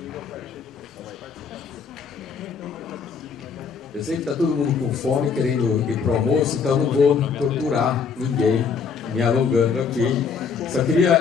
Eu sei que está todo mundo com fome, querendo ir para o almoço, então não vou torturar ninguém, me alongando aqui. Só queria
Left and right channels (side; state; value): right; quieter; 5.8 dB